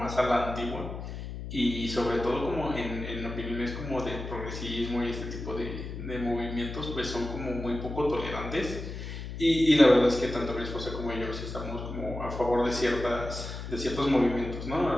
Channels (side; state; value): left; noise; hum, 8 dB below the sound